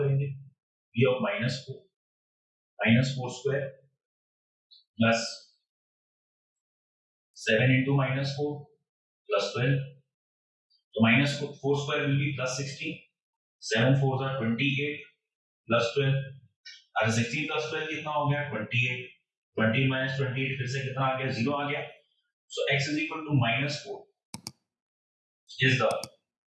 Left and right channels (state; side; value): identical; both; correlation 1.00